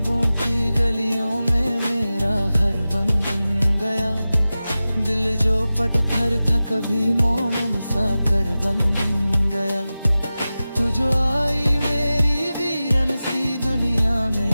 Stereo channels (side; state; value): both; inverted; correlation -0.96